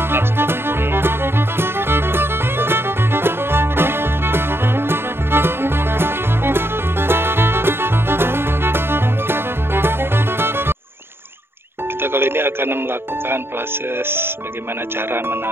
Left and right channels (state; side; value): late; left; 0.11 ms